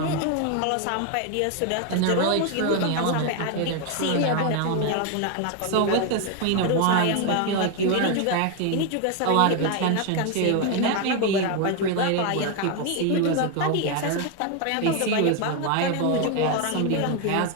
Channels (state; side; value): different; both; correlation 0.01